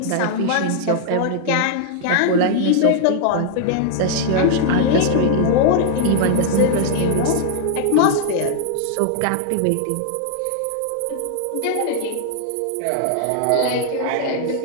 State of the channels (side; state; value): both; different; correlation 0.00